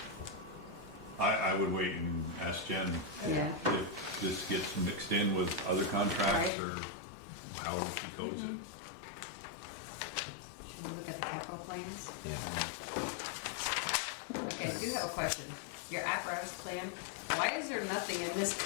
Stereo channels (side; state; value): right; drops out; at 6.5 s